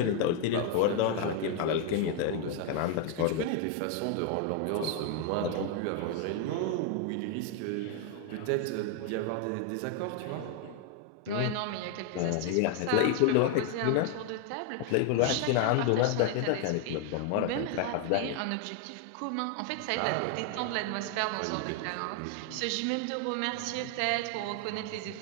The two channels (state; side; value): different; both; correlation 0.00